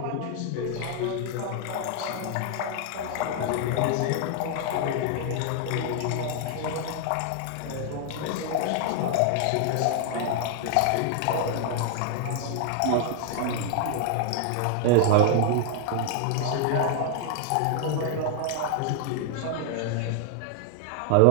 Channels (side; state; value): both; different; correlation 0.00